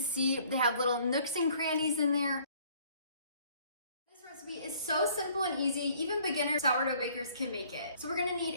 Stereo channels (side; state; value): both; inverted; correlation -0.59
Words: they have little nooks and crannies in there. This recipe is so simple and easy, even beginner sourdough bakers can make it. So we're gonna need